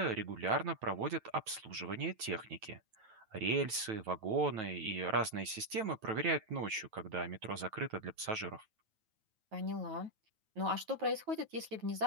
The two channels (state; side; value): late; left; 9.2 ms